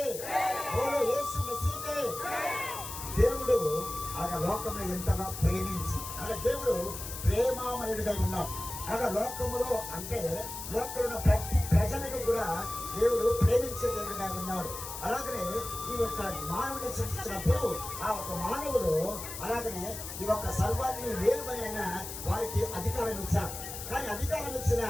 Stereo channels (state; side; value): noise; left; hiss, 9 dB below the sound